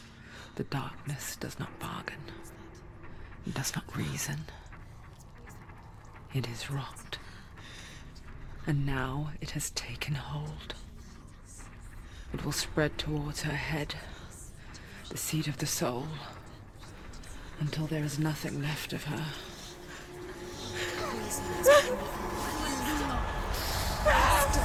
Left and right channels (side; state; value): both; identical; correlation 1.00